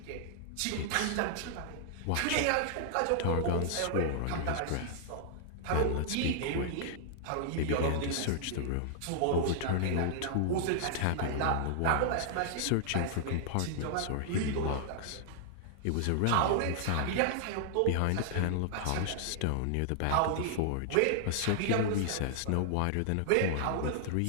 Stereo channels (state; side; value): different; both; correlation -0.01